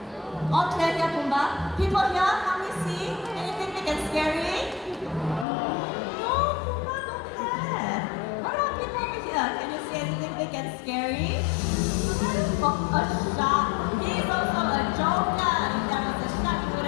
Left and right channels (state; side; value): drops out; right; at 5.5 s